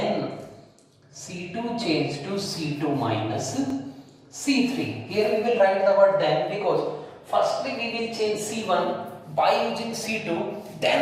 C2 change to C2 minus C3. Here we will write the word then, because firstly we will change C1 by using C2,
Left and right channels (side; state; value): both; identical; correlation 1.00